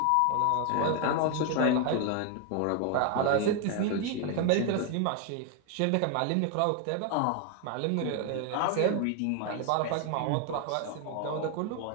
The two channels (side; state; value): both; different; correlation 0.00